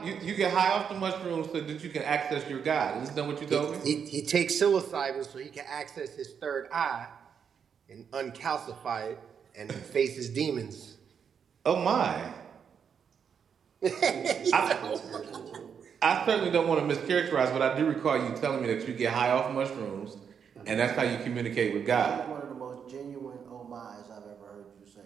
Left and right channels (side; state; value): left; quieter; 7.2 dB